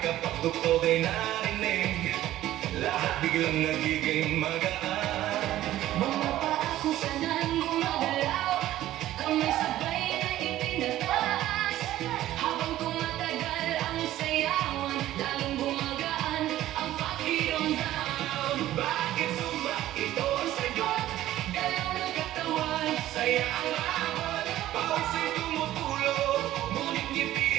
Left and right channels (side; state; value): left; quieter; 14.1 dB